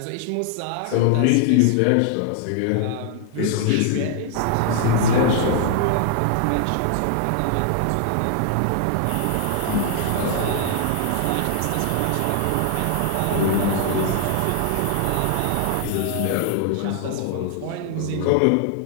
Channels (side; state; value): both; different; correlation 0.00